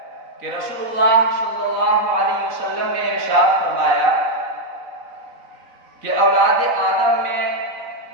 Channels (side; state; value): left; late; 4.0 ms